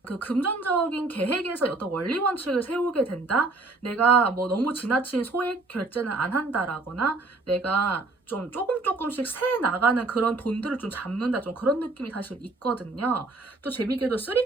그 금전적인 계획에서 어떤 원리 원칙을 세우게 된다? 내가 뭐 너무 지나친 소액 결제는 안 한다라거나 내가 좀 조금씩 새 나가는 그런 돈들을 좀 잡는다 좀 그런 느낌이 사실 있거든요. 또 재밌게도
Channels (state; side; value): quieter; left; 3.3 dB